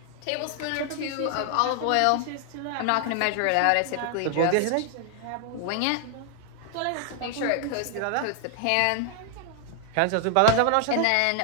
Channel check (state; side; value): different; both; correlation 0.00